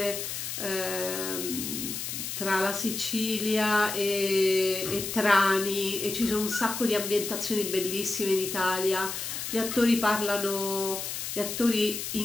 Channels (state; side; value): noise; left; hiss, 5 dB below the sound